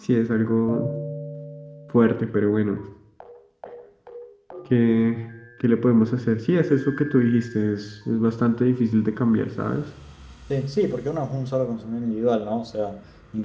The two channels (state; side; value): identical; both; correlation 1.00